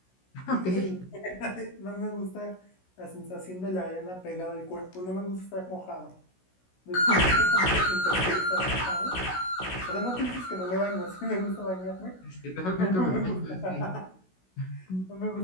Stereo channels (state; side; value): late; right; 16 ms